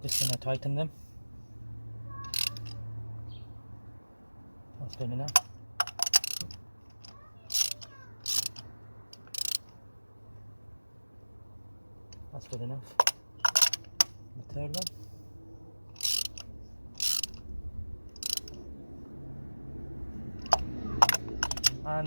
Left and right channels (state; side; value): inverted; both; correlation -1.00